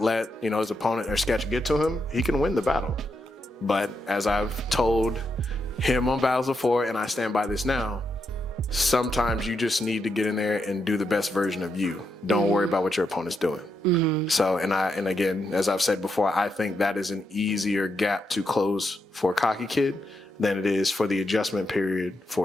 let, his opponent or sketch get to him, he can win the battle. But as I've told him on battles before, and I stand by this now, sometimes you just need to get in there and do the best version of you. Don't worry about what your opponent's doing. So, and again, as I've said before, I think that is an easier gap to close for a cocky kid than it is for the adjustment period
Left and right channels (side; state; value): both; normal; correlation 0.82